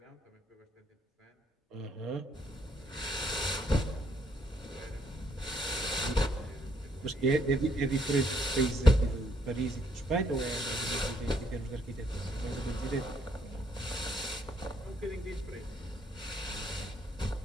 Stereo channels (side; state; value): both; normal; correlation 0.70